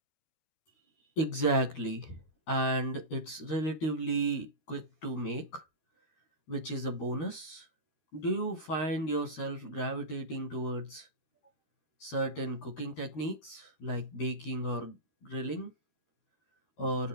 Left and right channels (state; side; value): late; right; 13 ms